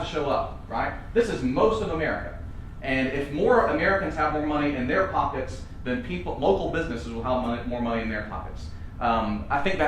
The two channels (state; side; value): identical; both; correlation 1.00